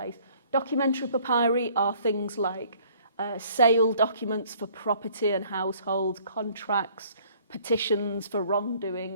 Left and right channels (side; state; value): both; inverted; correlation -0.57